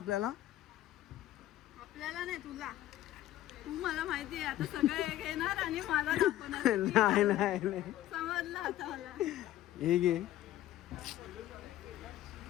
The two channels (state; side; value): quieter; right; 13.7 dB